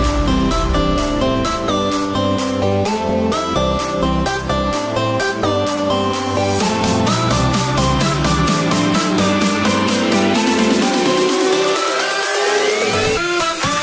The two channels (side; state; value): both; identical; correlation 1.00